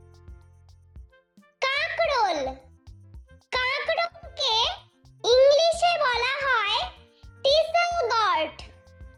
কাঁকরোল, কাঁকরোলকে ইংলিশে বলা হয় টিসেল গর্ড।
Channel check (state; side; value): identical; both; correlation 1.00